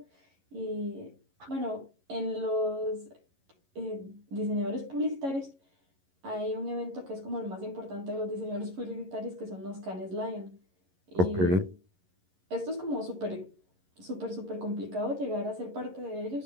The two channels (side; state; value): left; late; 11 ms